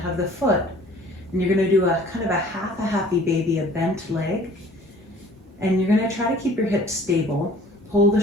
the foot. And you're gonna do a kind of a happy baby, a bent leg. And you're gonna try to keep your hips stable, pull the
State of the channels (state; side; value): normal; both; correlation 0.51